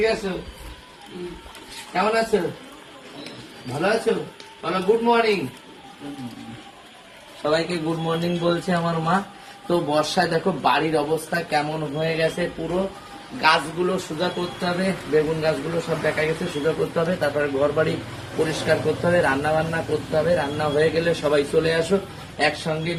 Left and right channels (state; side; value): identical; both; correlation 1.00